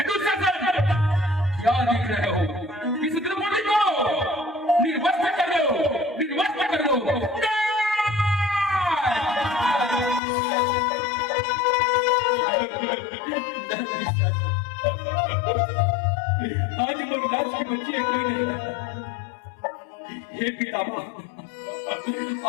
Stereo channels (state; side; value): drops out; right; at 10.2 s